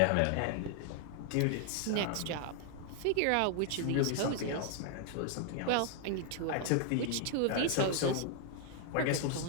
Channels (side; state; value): both; different; correlation 0.00